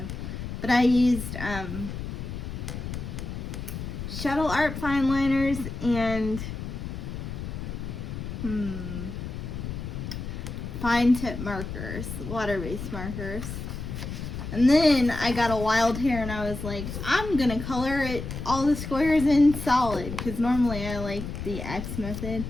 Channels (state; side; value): noise; left; rumble, 7 dB below the sound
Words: But I used Shuttle Art Fine Liners and fine tip markers, water-based markers. And then I got a wild hair and I was like, I'm gonna color it all the squares in solid, because normally I like the X method.